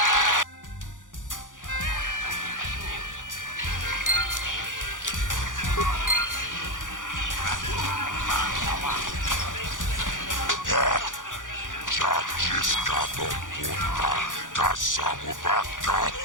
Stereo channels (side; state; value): right; late; 0.87 ms